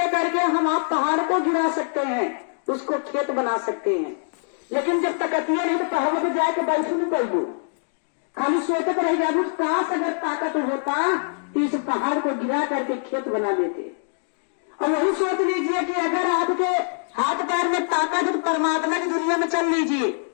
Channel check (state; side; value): silent; right; digital silence